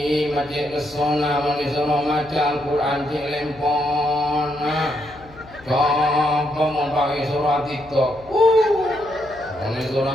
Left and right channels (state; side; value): noise; left; hum, 22 dB below the sound